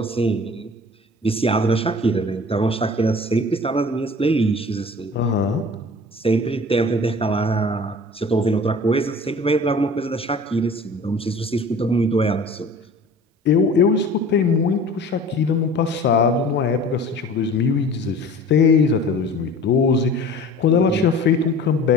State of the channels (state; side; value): normal; both; correlation 0.43